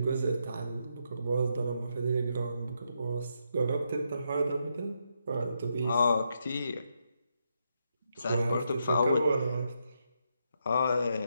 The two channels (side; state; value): both; inverted; correlation -0.80